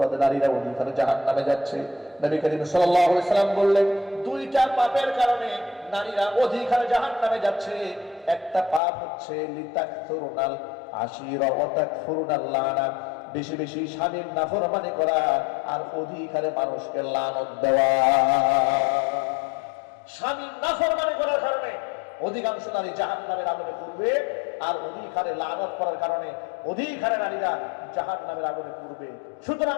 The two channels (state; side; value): drops out; right; at 8.8 s